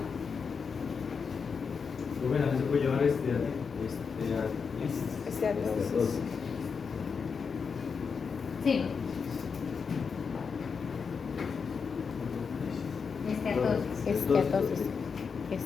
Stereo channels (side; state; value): right; quieter; 5.7 dB